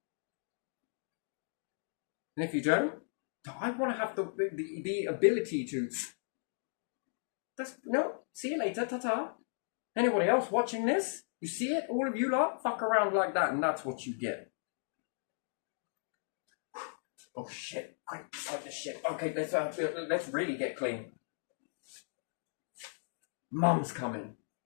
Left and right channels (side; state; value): right; silent; digital silence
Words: And if you don't, I want to have the ability to... No, see you later, ta-ta. Anybody else watching this? You see it? All of you lot fuck around like that, and that's what you get. Oh shit! Quick, take the shit. Okay, let's really get clean. Mum's coming.